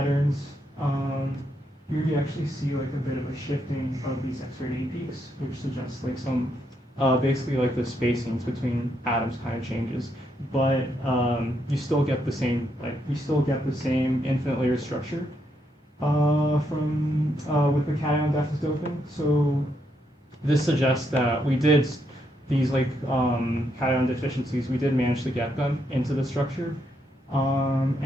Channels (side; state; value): both; normal; correlation 0.78